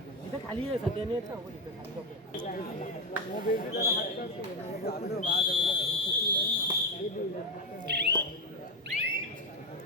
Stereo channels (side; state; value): both; normal; correlation 0.10